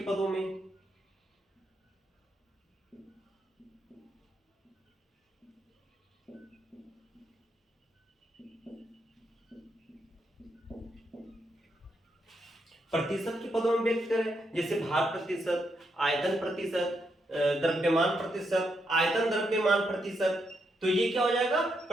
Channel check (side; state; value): both; normal; correlation 0.80